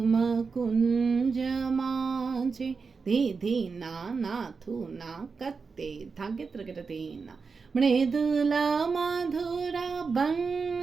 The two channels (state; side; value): quieter; left; 4.9 dB